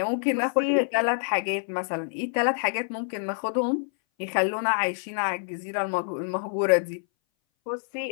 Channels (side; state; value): right; silent; 59 dB below the other